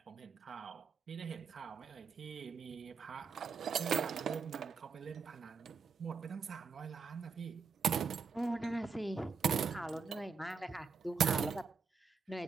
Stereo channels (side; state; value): left; quieter; 5.5 dB